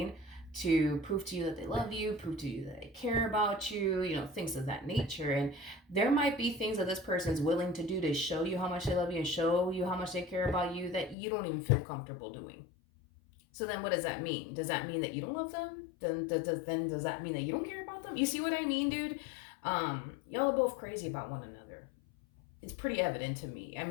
To prove to you that they love you, prove to you that they care about you, things of that nature. And there might be things that this person is willing to do to show you how much they love you and show you how much they care about you that you don't even feel comfortable doing. So then what does that mean? Does that mean that you don't love them? Then does that mean that you don't care about them? You see what I mean, dude? Y'all are both crazy about one another. It's pretty evident to me. I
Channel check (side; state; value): right; drops out; at 11.2 s